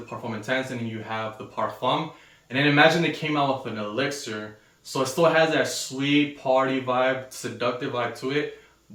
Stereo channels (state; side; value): identical; both; correlation 1.00